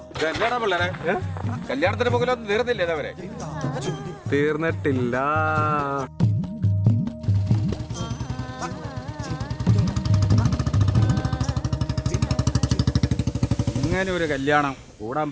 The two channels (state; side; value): identical; both; correlation 1.00